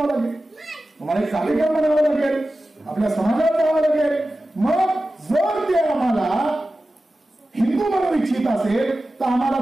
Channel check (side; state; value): both; normal; correlation 0.94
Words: लागेल, तुम्हाला एक कार्यक्रम बनावं लागेल, आपल्या समाजात जावं लागेल. मग जर ते आम्हाला हिंदू म्हणू इच्छित असेल तर आम्हाला